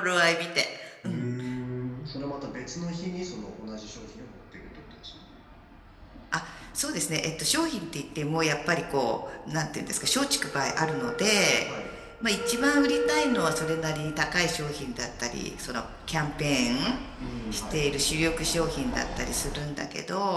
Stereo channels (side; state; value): both; identical; correlation 1.00